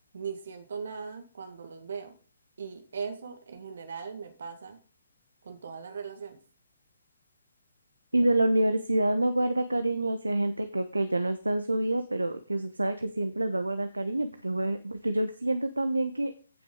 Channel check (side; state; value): both; inverted; correlation -0.94